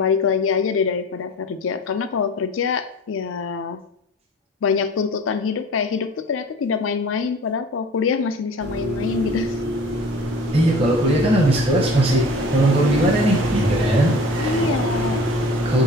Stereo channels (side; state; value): both; normal; correlation 0.43